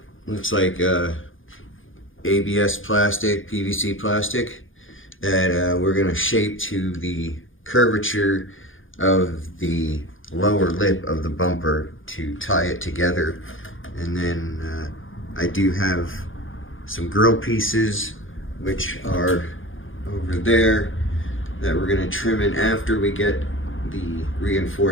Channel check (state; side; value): late; right; 0.58 ms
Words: looks like ABS plastic, PVC plastic, that we're going to shape to the curvature of the lower lip of the bumper to tie it together. And then I do have some grill pieces, which are over there, that we're going to trim in after we get the